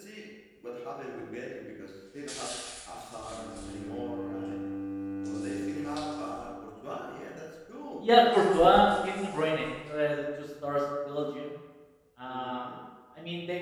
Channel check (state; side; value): identical; both; correlation 1.00